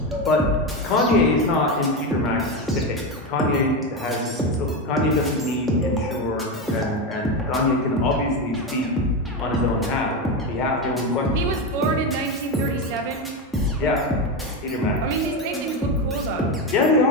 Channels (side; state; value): both; normal; correlation 0.14